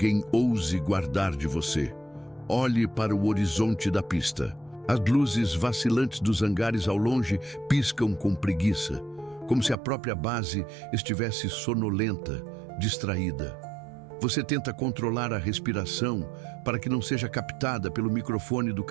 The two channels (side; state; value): left; drops out; at 9.8 s